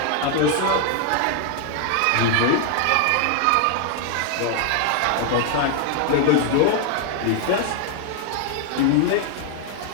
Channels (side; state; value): both; different; correlation 0.00